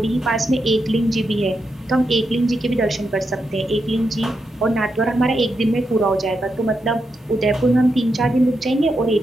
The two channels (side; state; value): both; normal; correlation 0.84